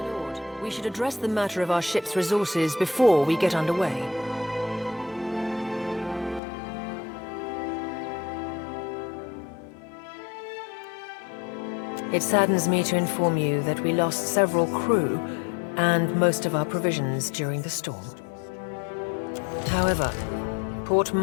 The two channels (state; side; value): drops out; right; at 6.4 s